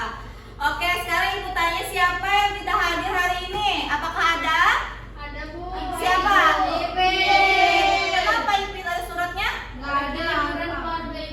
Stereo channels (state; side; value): identical; both; correlation 1.00